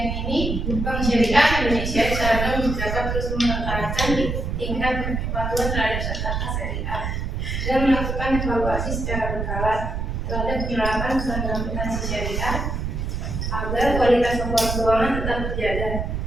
ini, Bank Syariah Indonesia disarankan dapat terus meningkatkan tingkat kepatuhan terhadap SHK syariah dan melakukan evaluasi secara berkala terhadap penerapan standar akuntansi syariah agar kualitas laporan keuangan tetap terjaga.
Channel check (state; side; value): noise; right; rumble, 2 dB below the sound